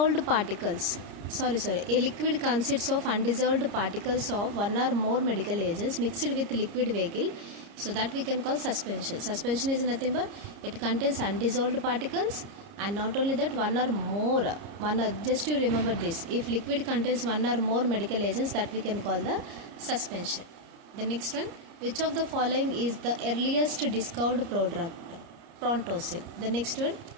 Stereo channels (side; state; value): left; late; 30 ms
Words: particles. A liquid consists of undissolved particles of one or more medical agents mixed with liquid vehicle. So that we can call suspension. Suspension is nothing but it contains undissolved particles, and not only that, just you remember this, if liquid contains one or more medical agents, that we can call the suspension. The next one, which of the following is the earliest discovered prodrug? Prontocil. The next one,